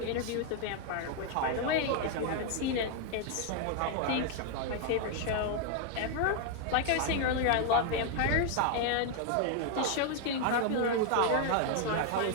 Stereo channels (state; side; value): different; both; correlation 0.00